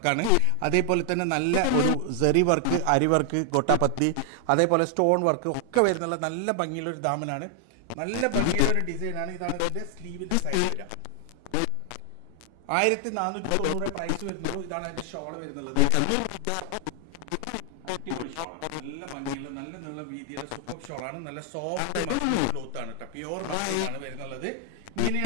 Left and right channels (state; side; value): different; both; correlation 0.00